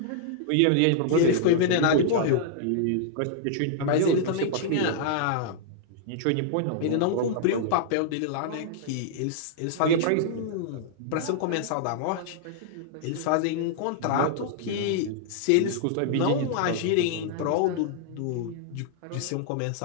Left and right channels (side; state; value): both; different; correlation -0.01